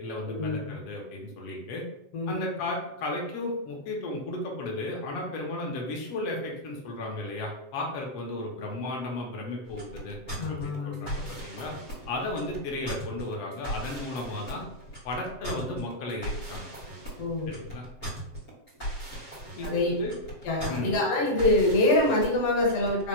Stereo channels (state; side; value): late; right; 7.6 ms